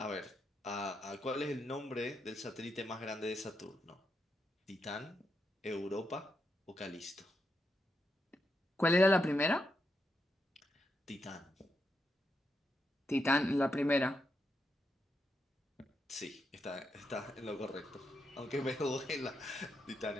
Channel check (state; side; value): normal; both; correlation 0.83